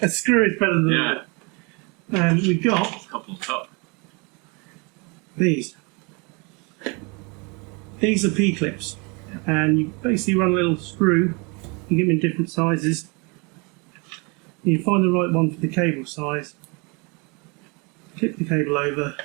screw is better than Yeah. that. And we've got A couple on top. these. These are P-clips. And you basically run a little screw. You get them in different sizes. You find the right one for the cable size. Clip the cable over.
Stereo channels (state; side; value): quieter; left; 30.3 dB